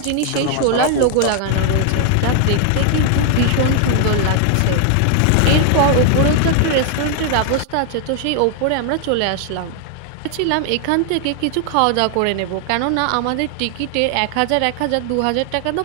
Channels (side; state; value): both; different; correlation 0.00